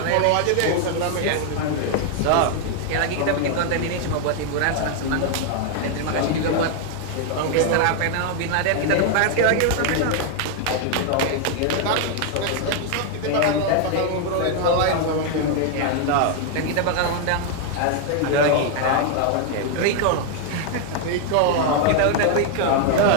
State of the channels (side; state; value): both; different; correlation 0.00